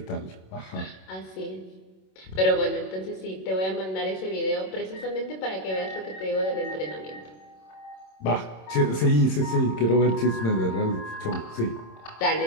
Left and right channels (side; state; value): right; late; 27 ms